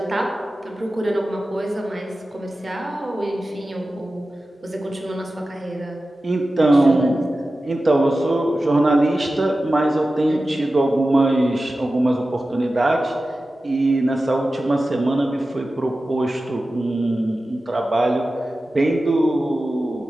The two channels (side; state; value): both; normal; correlation 0.94